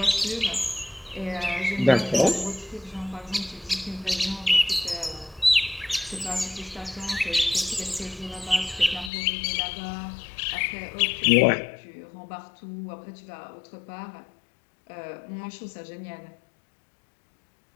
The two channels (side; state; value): right; drops out; at 9.1 s